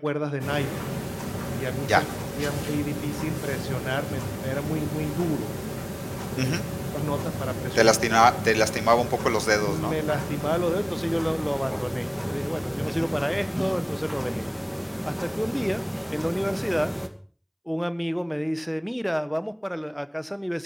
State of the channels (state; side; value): identical; both; correlation 1.00